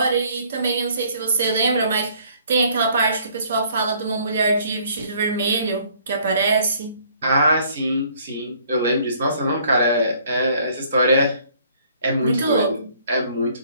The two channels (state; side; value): inverted; both; correlation -0.60